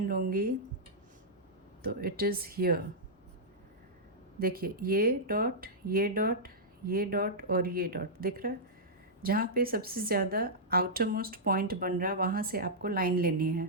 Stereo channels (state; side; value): normal; both; correlation -0.11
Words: लूँगी तो इट इज़ हियर। देखिए, ये डॉट, ये डॉट, ये डॉट और ये डॉट दिख रहा है। जहाँ पे सबसे ज़्यादा आउटर मोस्ट पॉइंट बन रहा है, वहाँ से आपको लाइन लेनी है।